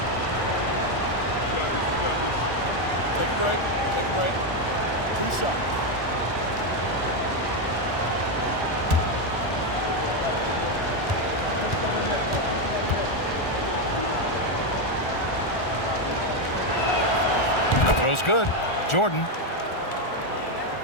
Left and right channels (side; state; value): right; late; 1.4 ms